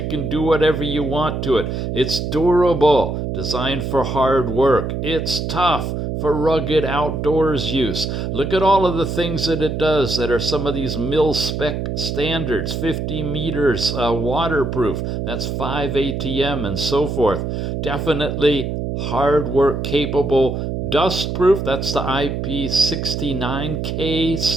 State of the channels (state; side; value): noise; right; hum, 3 dB below the sound